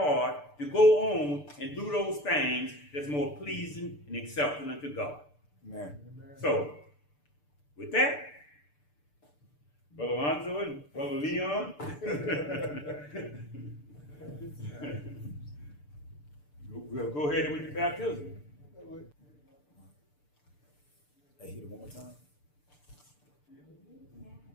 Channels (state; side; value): late; right; 6.8 ms